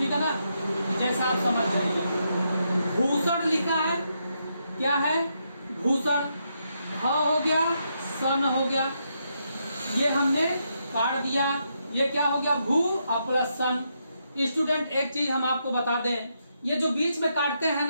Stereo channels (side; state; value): both; inverted; correlation -0.80